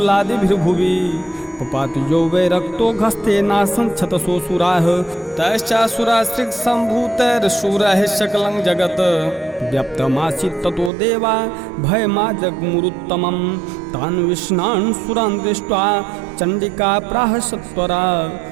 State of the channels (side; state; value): left; drops out; at 10.9 s